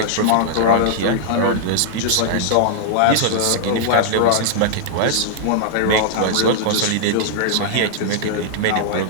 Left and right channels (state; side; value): different; both; correlation -0.01